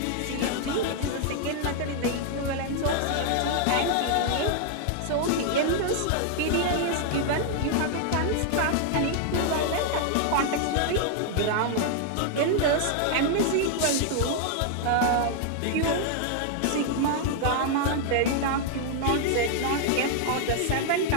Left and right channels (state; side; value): different; both; correlation 0.00